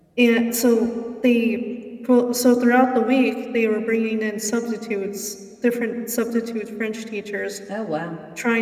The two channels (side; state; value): both; identical; correlation 1.00